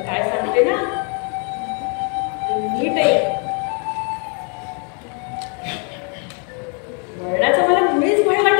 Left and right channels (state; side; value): quieter; right; 38.9 dB